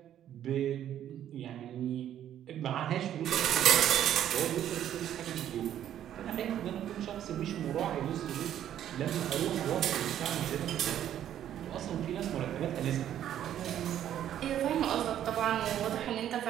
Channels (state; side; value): quieter; left; 10.9 dB